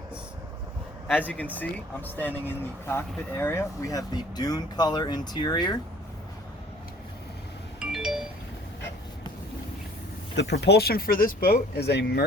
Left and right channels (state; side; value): normal; both; correlation 0.52